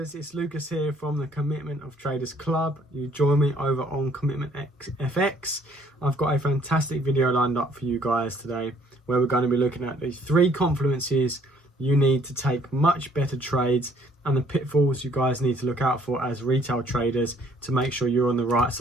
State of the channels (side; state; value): both; normal; correlation 0.62